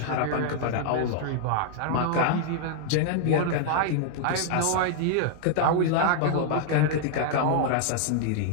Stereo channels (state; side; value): different; both; correlation -0.01